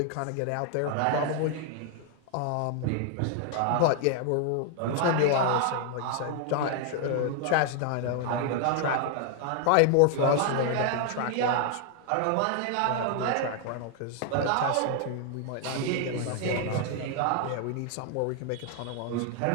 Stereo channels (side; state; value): both; different; correlation 0.00